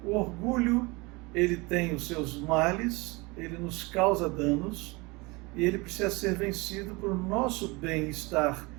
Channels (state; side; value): quieter; left; 25.4 dB